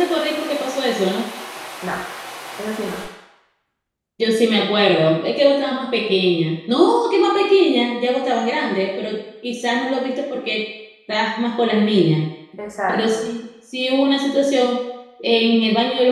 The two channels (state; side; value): identical; both; correlation 1.00